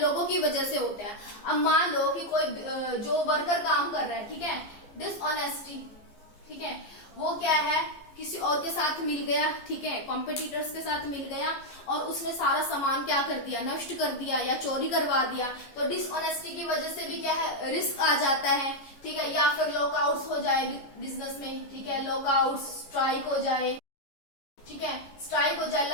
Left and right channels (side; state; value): right; late; 15 ms